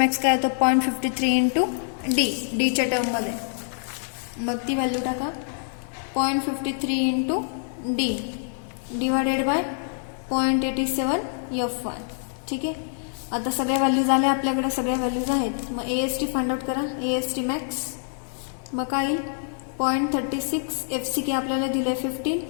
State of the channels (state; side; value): silent; right; digital silence